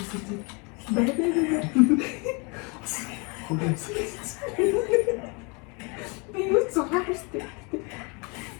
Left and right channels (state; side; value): quieter; right; 31.0 dB